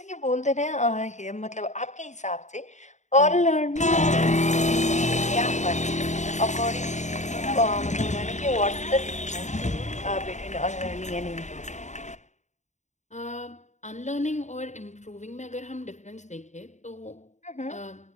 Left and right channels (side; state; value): right; late; 0.34 ms